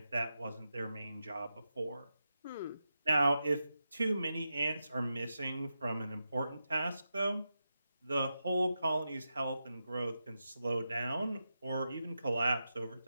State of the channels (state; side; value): inverted; both; correlation -0.89